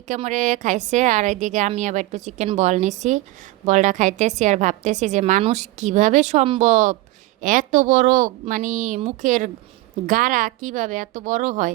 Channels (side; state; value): left; quieter; 18.4 dB